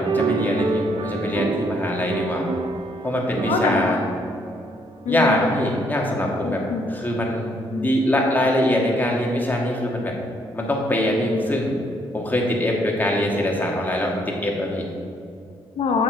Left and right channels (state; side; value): normal; both; correlation 0.69